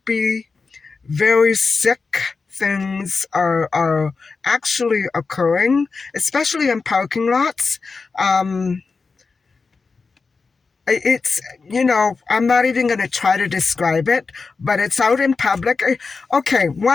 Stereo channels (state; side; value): quieter; right; 4.5 dB